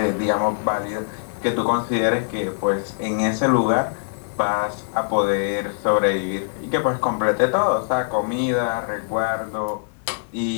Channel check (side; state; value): right; silent; digital silence